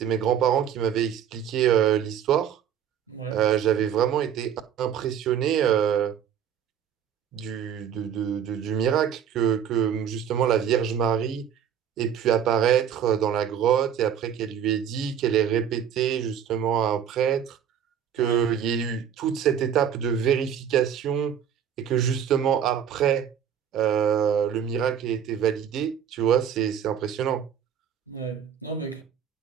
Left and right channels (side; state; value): left; quieter; 8.8 dB